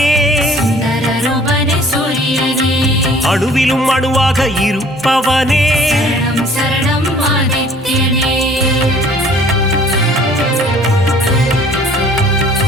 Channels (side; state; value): both; normal; correlation 0.53